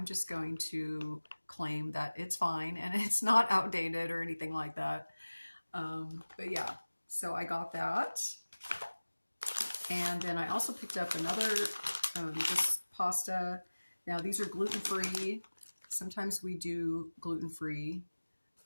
just going to claim that it's fine and it's not outdated or anything like that. But yeah, so I got that. And then I also picked up another this pasta. Now these are gluten-free. Sometimes we do gluten-free.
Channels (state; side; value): inverted; both; correlation -1.00